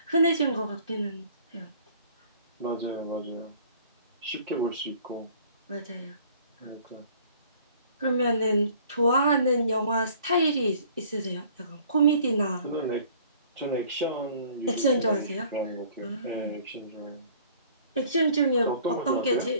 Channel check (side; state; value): both; inverted; correlation -0.53